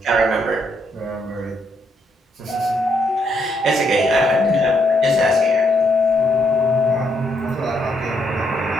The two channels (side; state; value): both; normal; correlation 0.75